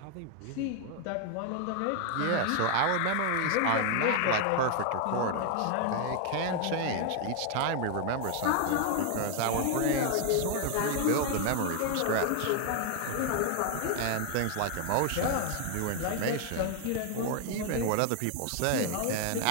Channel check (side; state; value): both; different; correlation 0.01